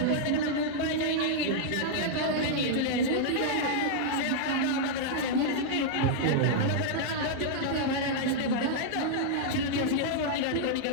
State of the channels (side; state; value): both; different; correlation -0.01